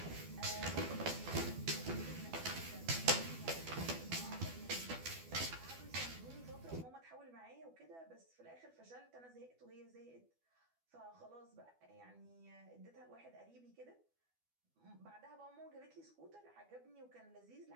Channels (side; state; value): left; late; 12 ms